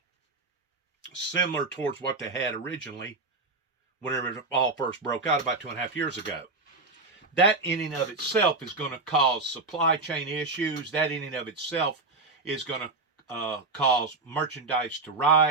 similar towards what they had originally whenever it all first broke out about 2.5 years ago. That in and of itself is going to cause supply chain issues. That in and of itself is going to cause merchandise to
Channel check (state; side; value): quieter; left; 3.5 dB